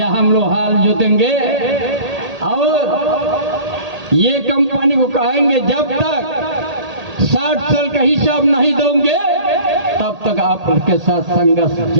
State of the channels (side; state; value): left; late; 1.8 ms